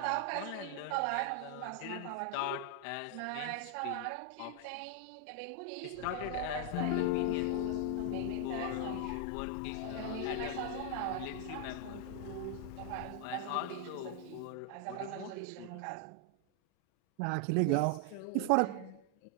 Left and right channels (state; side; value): different; both; correlation 0.00